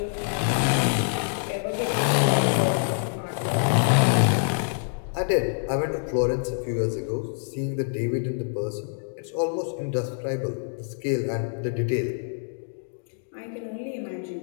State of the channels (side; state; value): right; silent; digital silence